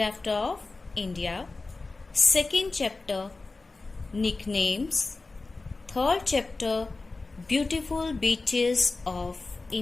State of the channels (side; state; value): right; quieter; 3.6 dB